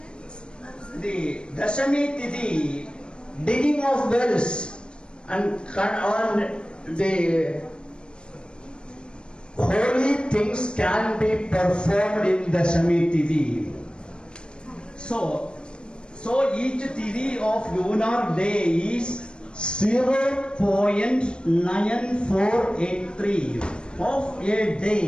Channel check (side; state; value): right; late; 0.053 ms